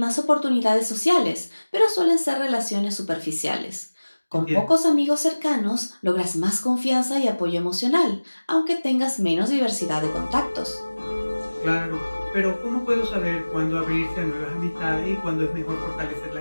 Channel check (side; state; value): both; inverted; correlation -1.00